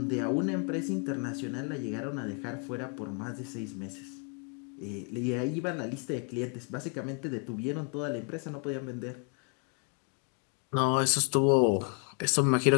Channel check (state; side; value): quieter; right; 38.8 dB